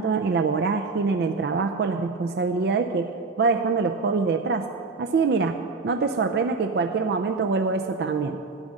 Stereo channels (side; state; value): left; quieter; 4.1 dB